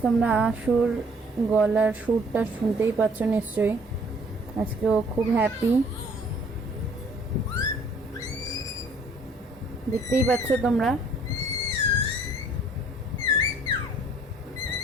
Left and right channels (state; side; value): normal; both; correlation 0.58